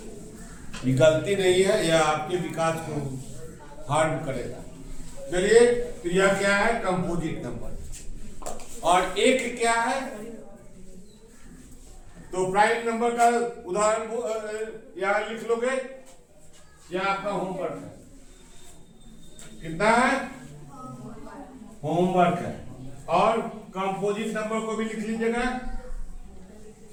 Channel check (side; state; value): both; identical; correlation 1.00